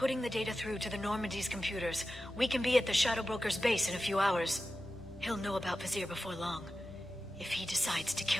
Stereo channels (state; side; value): normal; both; correlation 0.93